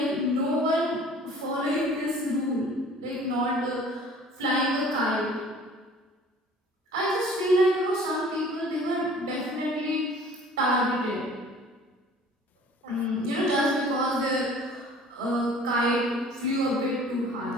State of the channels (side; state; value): both; normal; correlation 0.49